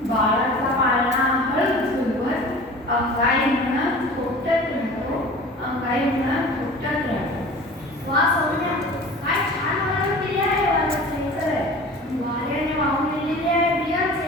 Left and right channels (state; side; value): normal; both; correlation 0.40